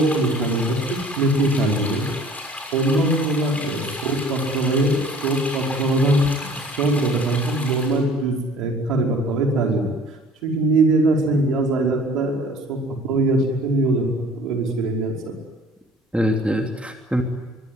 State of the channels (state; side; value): normal; both; correlation 0.50